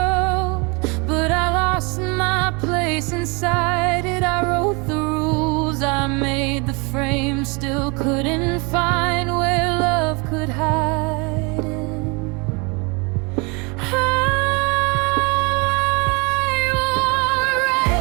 but I lost my place inside it. I wrote the rules, I made the frame, still couldn't find where love could hide in. I wore a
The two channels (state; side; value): quieter; left; 30.0 dB